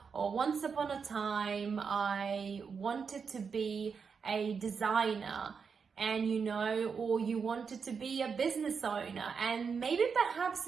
or once upon a time I wanted to be a designer, and or you wanted to be a business owner, and maybe perhaps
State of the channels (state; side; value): quieter; left; 5.9 dB